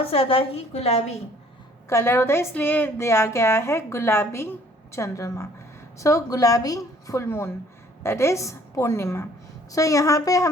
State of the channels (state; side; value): normal; both; correlation 0.58